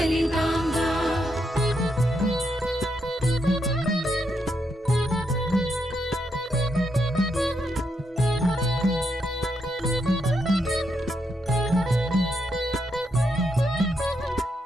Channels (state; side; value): normal; both; correlation 0.80